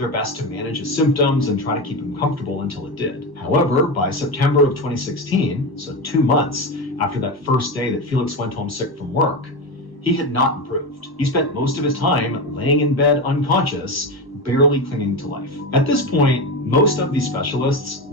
best to manage his symptoms and try to keep him comfortable until it did. However, by September of 2016, so 2 months after that first day that Felix went home sick from work, He had not improved. He spent most of his time laying in bed unconscious, barely clinging to life. At this point, most of these specialists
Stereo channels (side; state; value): right; late; 1.1 ms